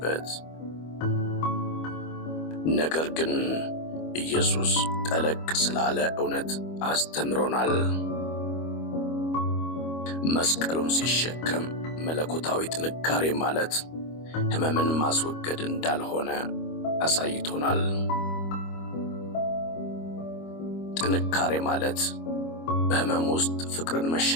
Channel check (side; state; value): right; late; 25 ms